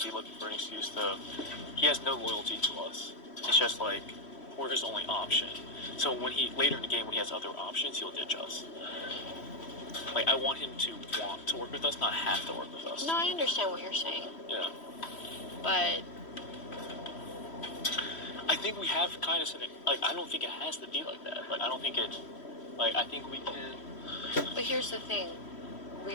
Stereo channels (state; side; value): late; right; 3.1 ms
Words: be looking for an excuse to... He has no loyalty to us. It's just like, we're his only option. So when later in the game, when he has other options, he'll ditch us. Like, I want him to want to work with us, not have to work with us. No, I understand what you're saying. Yeah. But... I think we have kind of something... Like, I don't think it has to be like that. Like, I don't think it... Like, I think we can... But here's the thing.